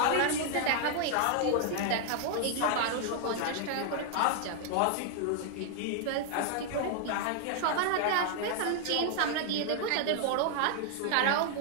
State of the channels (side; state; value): both; different; correlation 0.00